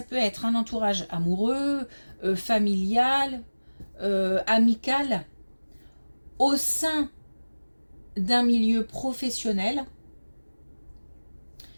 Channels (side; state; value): both; inverted; correlation -1.00